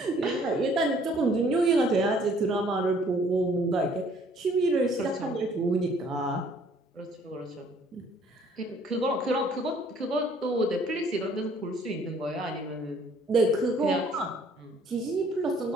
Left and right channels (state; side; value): normal; both; correlation 0.59